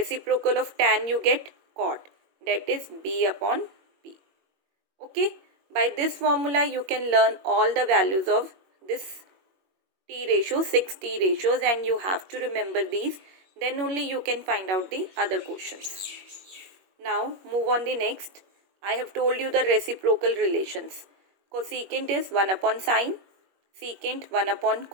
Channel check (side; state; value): left; late; 21 ms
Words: of tan you get cot, that is b upon b. Okay, by this formula you can learn all the values of this T ratio, 6 T ratios, and you have to remember these. Then only you can find out the other questions. Now move on the next. I have told you the reciprocal relations. Cosecant is 1 upon sine, secant 1 upon